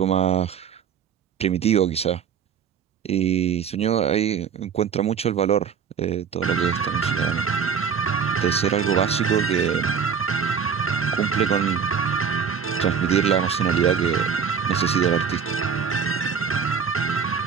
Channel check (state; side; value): quieter; left; 6.9 dB